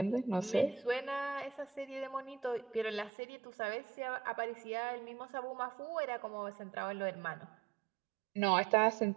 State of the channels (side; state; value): left; drops out; at 3.1 s